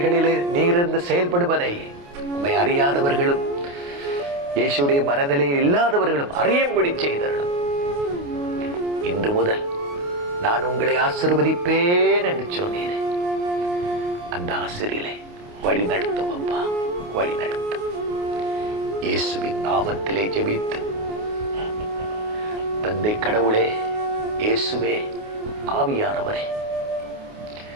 நீரிருந்து செயல்படுவதை உம்மை அறியாதவர்களும் இயேசுடைய மனநிலையில் இல்லாதவர்களும் அறியும்படி செய்தருளும். இன்று முதல் நான் உங்களை ஆசீர்வதிப்பேன் என்று சொன்னேன். அந்த ஆசிரியிலே வழி நடத்தும் அப்பா, வழி நடத்தும். இயேசுவின் நாமத்திலே ஜெபித்து, தந்தை கடவுளே, இயேசுவே, ஆவியானவரே,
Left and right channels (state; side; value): late; left; 28 ms